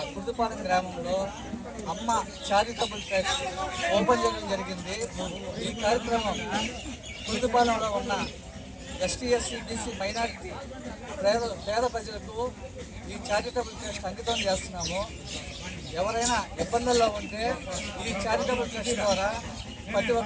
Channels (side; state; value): both; identical; correlation 1.00